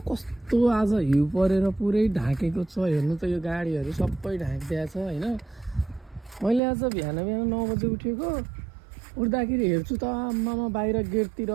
कस्तो आज हिउँ परेर पुरै ढाकेको छ। हेर्नु त यो गाडीहरू सबै ढाकिदिएको छ होइन। मैले आज बिहान 9 बजे उठेको। उठ्दाखेरि हेर्छु त आम्मामा बाहिर गेटतिर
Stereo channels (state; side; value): drops out; left; at 6.6 s